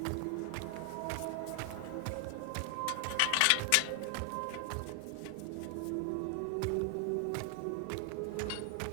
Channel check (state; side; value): different; both; correlation 0.00